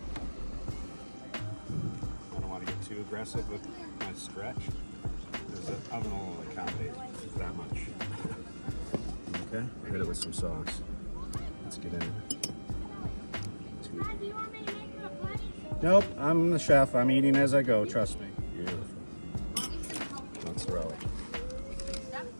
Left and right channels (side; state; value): both; inverted; correlation -1.00